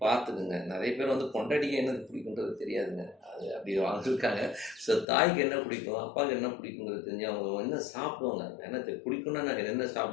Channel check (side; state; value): right; drops out; at 5.1 s